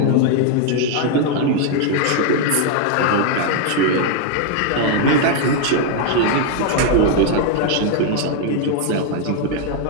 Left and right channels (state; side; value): different; both; correlation 0.01